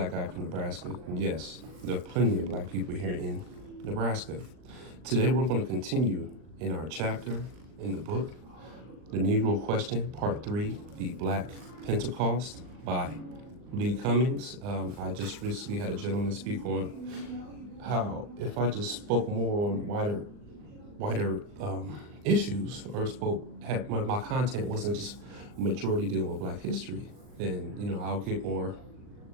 guy from Nebraska. And yes, there are plenty of black people here in Nebraska. Today, we're going to continue in our chapter in the book, The Negro Question, Part 3, The Black Pentecost by Lee Cummings. I just recently had a gentleman speak on how if I just spoke more on wider issues, or had my content wasn't just majority dealing with Black history, then I'll get more.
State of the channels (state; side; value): late; left; 39 ms